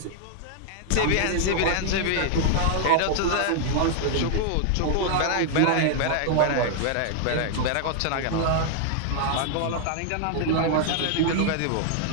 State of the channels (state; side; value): different; both; correlation 0.00